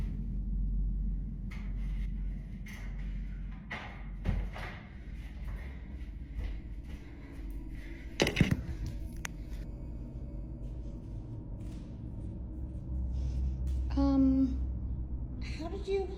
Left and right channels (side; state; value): both; identical; correlation 1.00